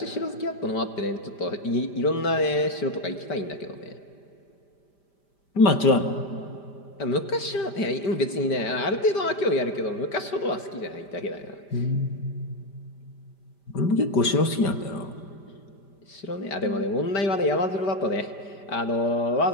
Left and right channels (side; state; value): right; late; 5.0 ms